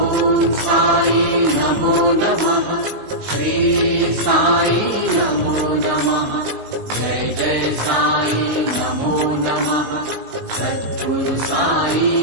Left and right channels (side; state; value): left; late; 19 ms